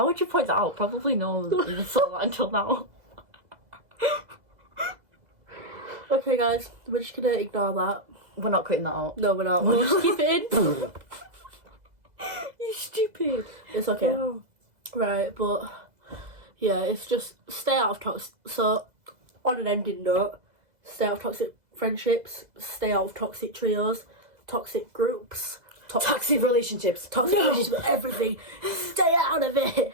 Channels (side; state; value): left; late; 2.0 ms